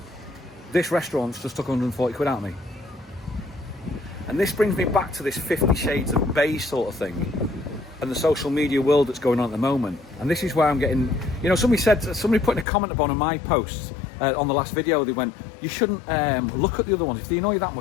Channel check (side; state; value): right; drops out; at 12.7 s